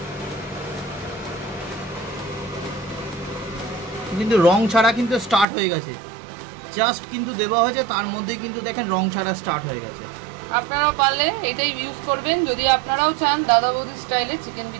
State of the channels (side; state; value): left; drops out; at 5.5 s